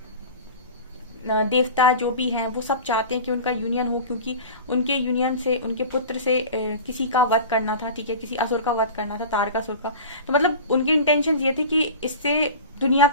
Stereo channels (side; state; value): both; inverted; correlation -0.34